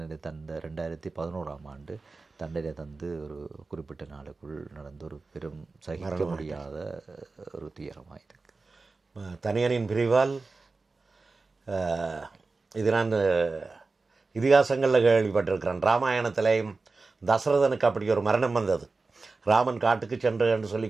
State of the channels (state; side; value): quieter; left; 3.9 dB